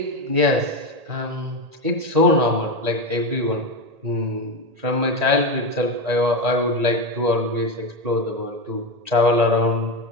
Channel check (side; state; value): left; late; 1.8 ms